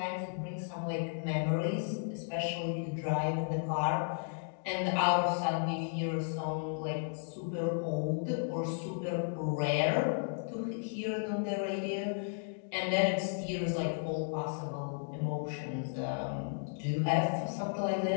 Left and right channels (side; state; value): right; silent; digital silence